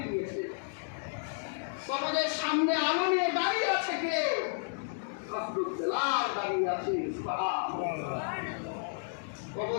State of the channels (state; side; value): silent; right; digital silence